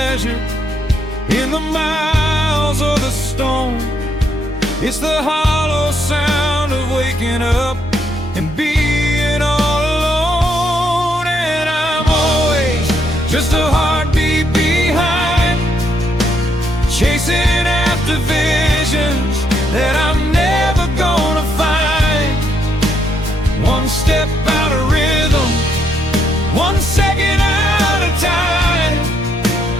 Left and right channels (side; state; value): both; normal; correlation 0.75